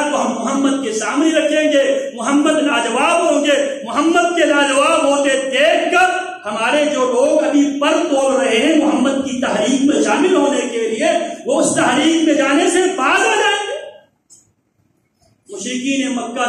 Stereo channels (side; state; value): both; identical; correlation 1.00